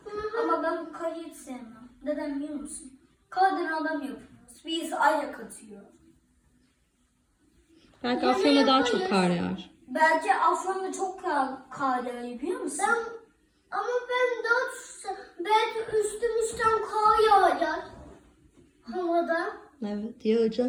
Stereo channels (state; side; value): identical; both; correlation 1.00